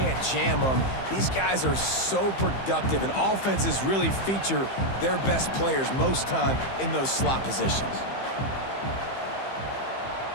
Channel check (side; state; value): right; late; 15 ms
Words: jam them. These guys are so productive, and offenses really feature their best players most time in those slot positions.